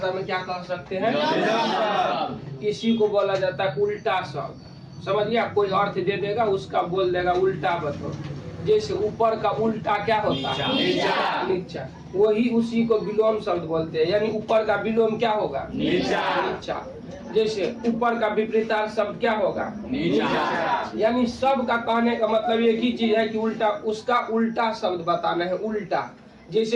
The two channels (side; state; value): both; identical; correlation 1.00